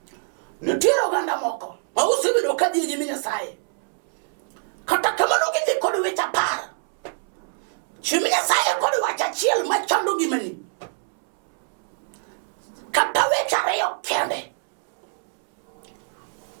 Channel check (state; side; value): silent; left; 63 dB below the other